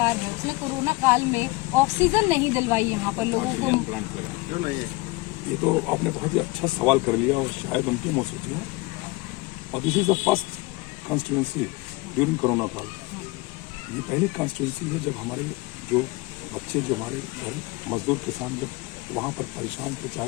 है उसने कोरोना काल में ऑक्सीजन नहीं दिलवाई यहाँ पर लोगों को। ये तो आपने बहुत ही अच्छा सवाल कर लिया और शायद उनके मुंह से है। और this is the first constituency during corona काल। ये पहली कॉन्स्टिट्यूंसी है जब हमारे जो बच्चे, जो हमारे घर मजदूर किसान जब वहाँ पर परेशान थे, चाहे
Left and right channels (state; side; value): quieter; right; 23.1 dB